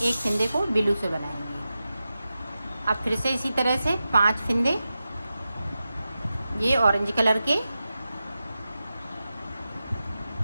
फिंदे को ब्लू से बनाएंगे। अब फिर से इसी तरह से 5 फिंदे ये ऑरेंज कलर के,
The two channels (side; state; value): both; inverted; correlation -0.92